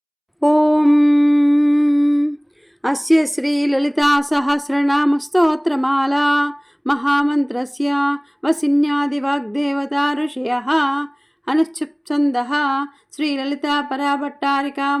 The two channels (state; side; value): identical; both; correlation 1.00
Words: ఓం అస్య శ్రీ లలితా సహస్రనామ స్తోత్రమాలా మహామంత్రస్య వసిన్యాది వాగ్దేవతా ఋషయః అనుచ్ఛుప్ఛందః శ్రీలలితా పరాభట్టారికా